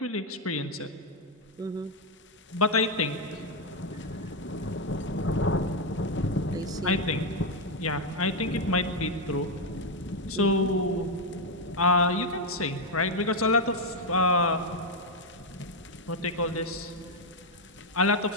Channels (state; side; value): normal; both; correlation 0.03